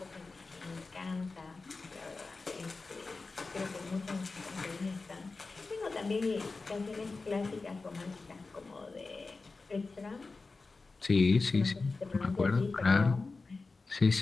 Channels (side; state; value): right; quieter; 3.8 dB